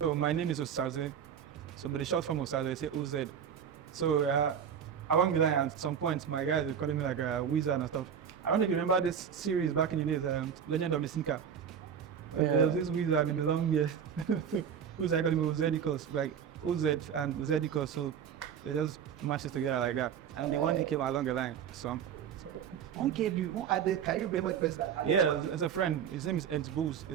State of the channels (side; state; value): left; quieter; 8.1 dB